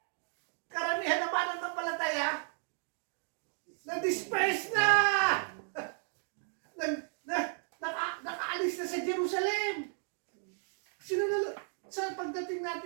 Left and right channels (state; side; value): silent; left; 55 dB below the other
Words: karamihan ng mananampalataya na-disperse na! Nakaalis na sa Jerusalem. Sino na, sa pagdating